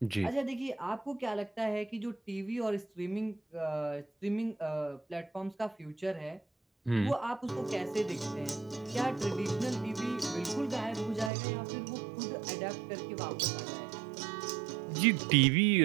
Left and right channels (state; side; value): drops out; left; at 11.3 s